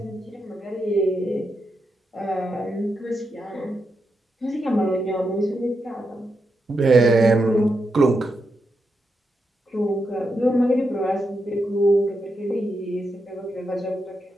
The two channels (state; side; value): normal; both; correlation 0.85